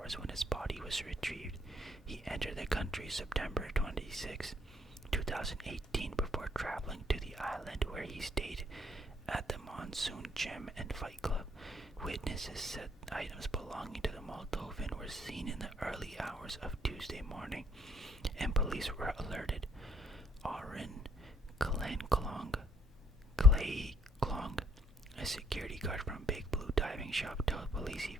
when his body was retrieved. He entered the country September 26, 2018 before traveling to the island where he stayed at the Monsoon Gym and Fight Club. Witnesses said items belonging to the Moldovan were seen in the early hours of Tuesday morning, and police were alerted. Aaron Clay Klong, a security guard from Big Blue Diving Shop, told police he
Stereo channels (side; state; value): both; normal; correlation 0.66